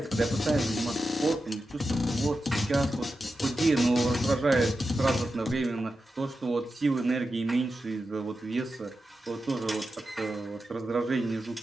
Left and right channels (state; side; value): normal; both; correlation 0.90